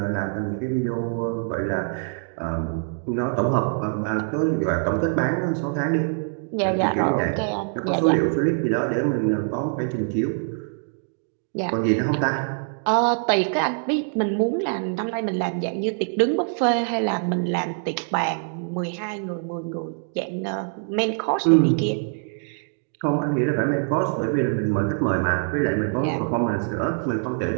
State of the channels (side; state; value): left; silent; 62 dB below the other